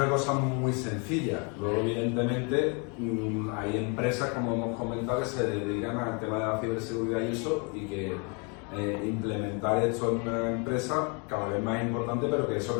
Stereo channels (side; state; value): right; quieter; 34.4 dB